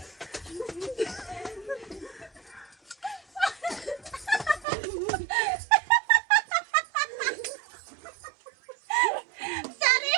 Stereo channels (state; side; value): drops out; left; at 4.7 s